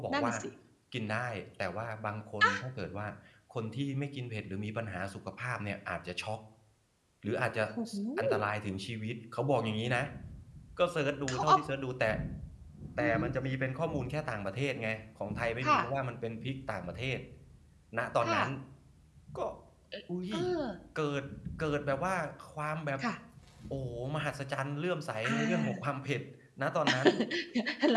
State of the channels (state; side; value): identical; both; correlation 1.00